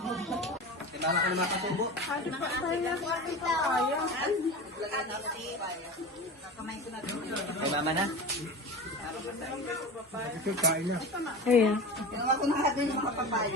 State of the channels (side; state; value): both; normal; correlation 0.30